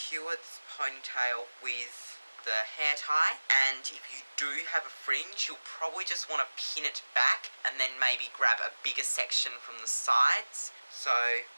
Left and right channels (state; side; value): inverted; both; correlation -1.00